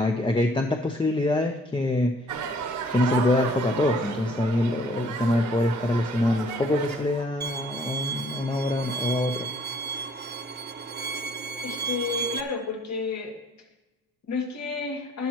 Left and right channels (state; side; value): normal; both; correlation 0.59